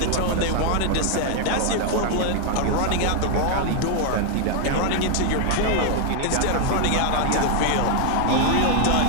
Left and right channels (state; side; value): different; both; correlation 0.00